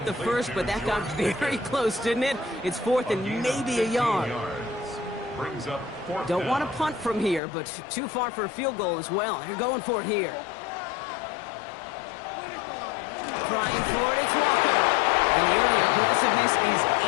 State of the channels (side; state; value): right; drops out; at 7.4 s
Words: The first, but that got very close, didn't it? It's 4th and maybe a yard. Brings up 4th Don't down. want to punt from here, but too far for a field goal as well. They're going for it here. Trying for it, it's Walker. And the early aggressiveness is